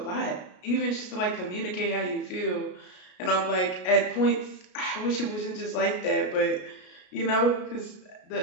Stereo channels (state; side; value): late; right; 33 ms